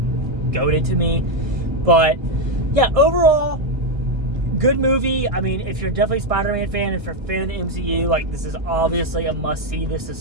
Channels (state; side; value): late; left; 1.5 ms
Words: goated to me. But yeah, overall, good movie. I mean, if you're definitely a Spider-Man fan, if you're a fan of the MCU, like, this is obviously a must-see. This is